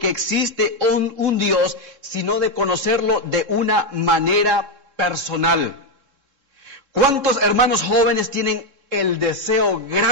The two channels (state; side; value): late; left; 3.7 ms